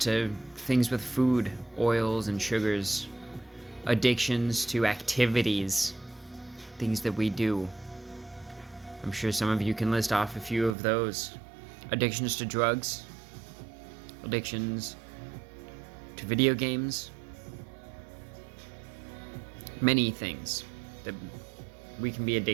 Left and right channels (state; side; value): drops out; left; at 10.8 s